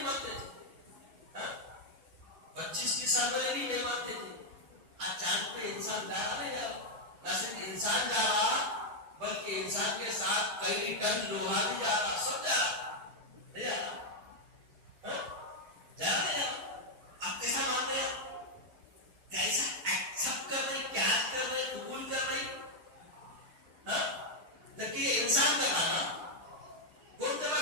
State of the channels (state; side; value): late; left; 9.0 ms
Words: مانتے تھے، 25 سال پہلے بھی نہیں مانتے تھے۔ آج چاند پہ انسان جا رہا نہیں جا رہا، نہ صرف انسان جا رہا بلکہ انسان کے ساتھ کئی ٹن لوہا بھی جا رہا، سب جا رہا، نہیں جا رہا، جا رہا نہیں جا رہا۔ آپ کیسا مان رہے ہیں؟ کیسا ایکسپٹ کر رہے، کیا کر رہے، قبول کر رہے؟ جبکہ یہ انسان کر رہا نا، کون کر رہا؟